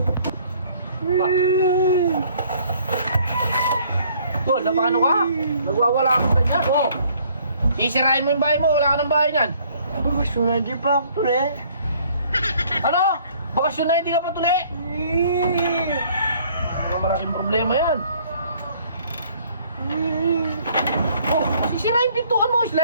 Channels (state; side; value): inverted; both; correlation -0.60